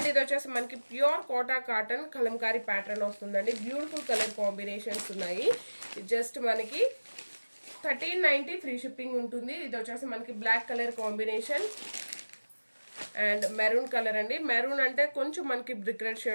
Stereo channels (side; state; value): both; inverted; correlation -1.00